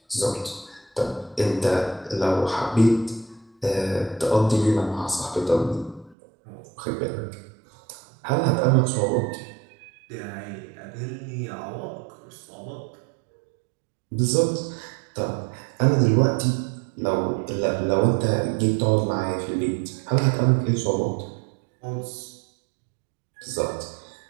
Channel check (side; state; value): left; drops out; at 6.2 s